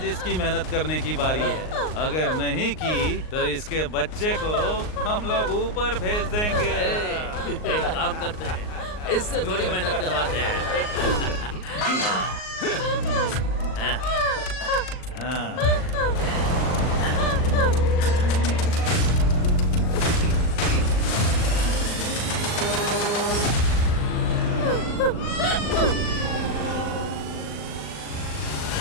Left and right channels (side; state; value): right; late; 38 ms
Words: इसकी मेहनत करने की बारी है। अगर नहीं की तो इसके बच्चे को हम लोग ऊपर भेज देंगे। एक काम करते हैं, इससे थोड़ी मेहनत करवाते हैं। हाँ।